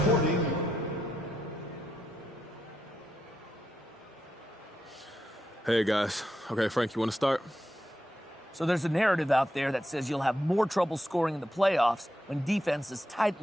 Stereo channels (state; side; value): normal; both; correlation 0.84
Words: Hey, guys. Okay, Frank, you want to start? So there's a narrative out there that says you'll have more trouble scoring in the playoffs when defenses